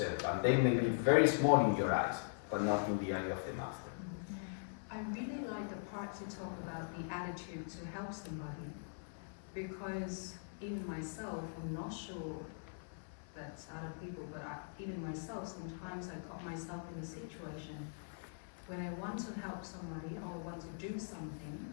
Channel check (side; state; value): right; silent; 50 dB below the other